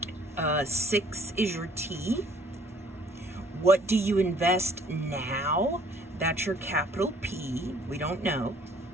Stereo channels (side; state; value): both; normal; correlation 0.58